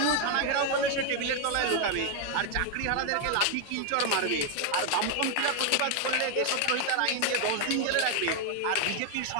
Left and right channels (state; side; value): different; both; correlation 0.01